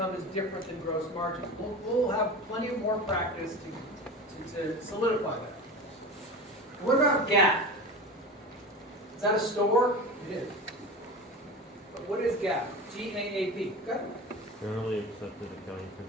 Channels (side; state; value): both; normal; correlation 0.30